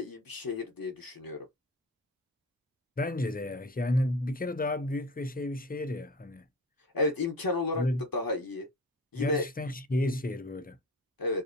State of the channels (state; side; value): normal; both; correlation 0.34